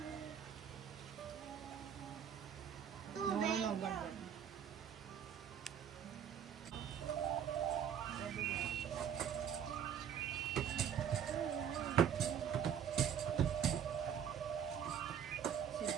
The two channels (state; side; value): quieter; left; 8.6 dB